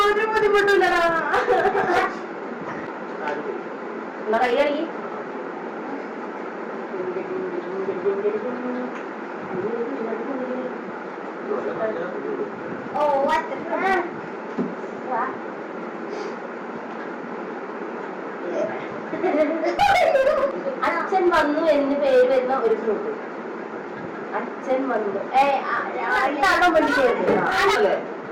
ഒരു ബുദ്ധിമുട്ടില്ലടാ കൈയടി അച്ഛൻ വന്നു എന്ന് പേര് വരുന്ന ഒരു ഫ്രൂട്ട്. അച്ഛൻ വന്നു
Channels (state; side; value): identical; both; correlation 1.00